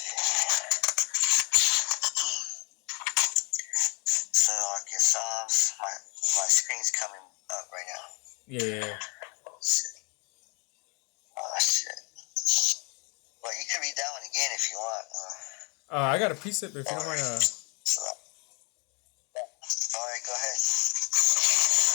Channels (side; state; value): right; quieter; 29.9 dB